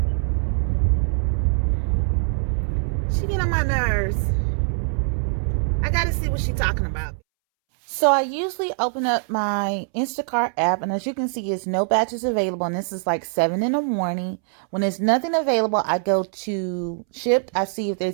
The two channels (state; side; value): silent; left; 63 dB below the other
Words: She get on my nerves. I gotta see what she's talking about. So I usually open up my Instacart app, and as you can see, it's no batches available, and this is like 7 in the morning. When there's nothing available, I go to Shipt. I see if